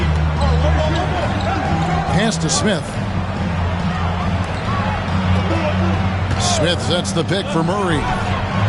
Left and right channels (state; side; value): identical; both; correlation 1.00